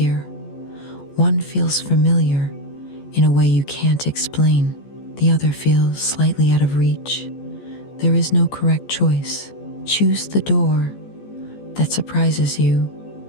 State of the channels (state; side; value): late; right; 14 ms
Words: One feels familiar in a way you can't explain. The other feels slightly out of reach. There is no correct choice. Choose the door that surprises you